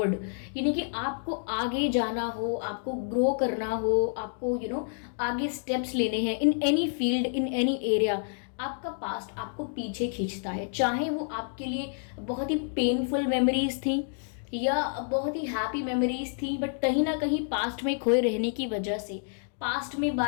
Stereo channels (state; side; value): silent; right; digital silence